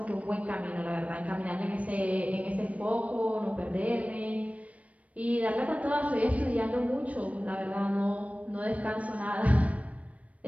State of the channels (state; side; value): late; left; 0.066 ms